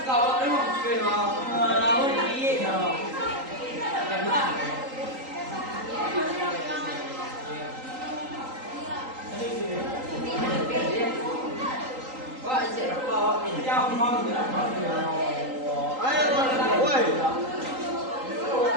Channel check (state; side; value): late; left; 3.8 ms